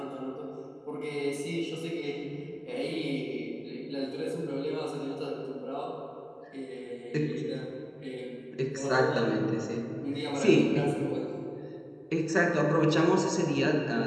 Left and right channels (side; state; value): both; identical; correlation 1.00